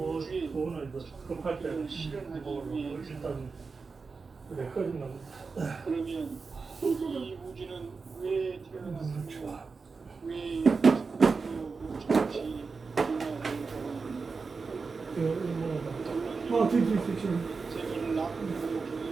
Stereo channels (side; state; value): left; quieter; 4.6 dB